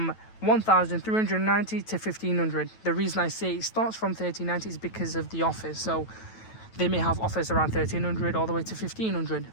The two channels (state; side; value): late; right; 9.1 ms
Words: 1,390 to 1,500. The reason I say it starts from 1,390 is because of the offers. So they may have offers around 1,300 all the way to 1,500.